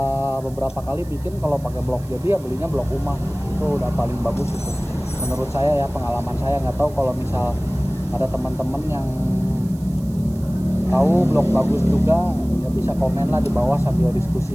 beberapa kali bikin, kalau pakai blok jadi ya belinya blok UMA, itu udah paling bagus itu menurut saya ya, pengalaman saya. Nggak tahu kalau misal ada teman-teman yang tahu blok bagus juga ya bisa komen lah di bawah sambil diskusi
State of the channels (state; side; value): noise; right; hiss, 24 dB below the sound